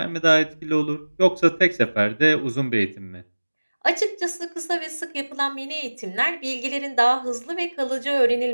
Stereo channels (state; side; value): inverted; both; correlation -1.00